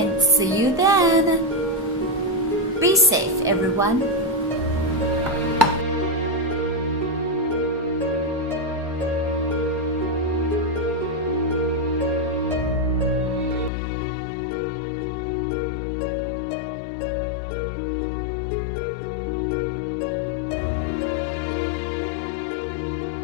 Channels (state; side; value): drops out; right; at 13.7 s